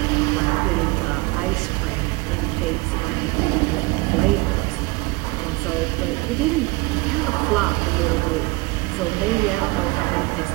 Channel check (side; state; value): left; quieter; 23.9 dB